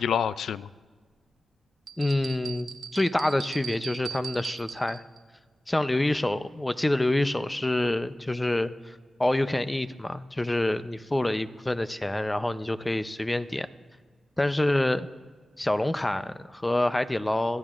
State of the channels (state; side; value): normal; both; correlation 0.97